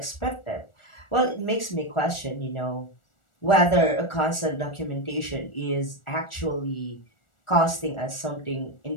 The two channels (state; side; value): late; right; 1.4 ms